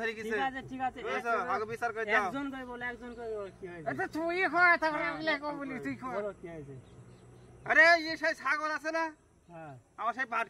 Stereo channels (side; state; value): both; identical; correlation 1.00